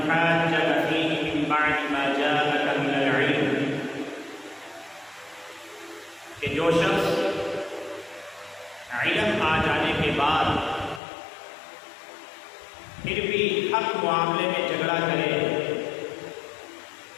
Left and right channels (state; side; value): drops out; right; at 11.0 s